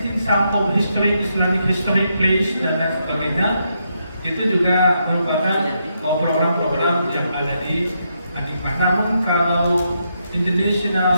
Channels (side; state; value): both; inverted; correlation -0.80